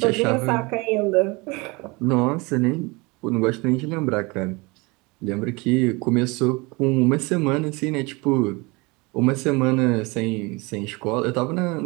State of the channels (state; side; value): quieter; left; 25.9 dB